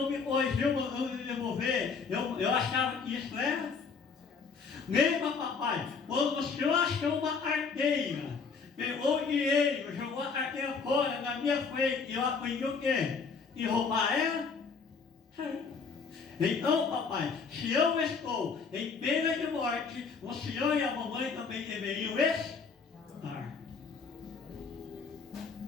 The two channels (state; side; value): quieter; right; 5.3 dB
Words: me corrigiu, mandou me devolver. Eu achava que isso era. Lembra, papai, quando o senhor achou uma carteira, pegou o dinheiro, jogou a carteira fora na minha frente, e eu aprendi o quê? E roubar ela? Então, papai, se eu estou em pena de morte, o senhor e a mamãe também deveriam estar.